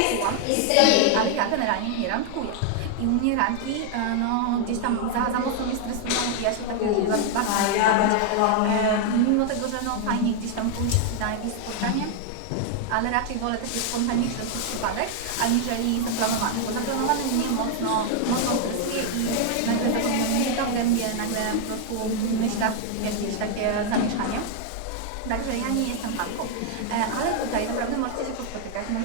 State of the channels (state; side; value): different; both; correlation 0.00